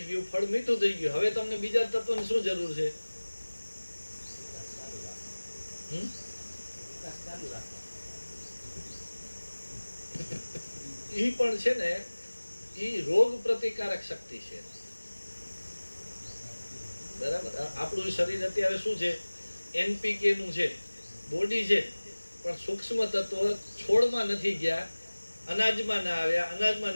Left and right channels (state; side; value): inverted; both; correlation -1.00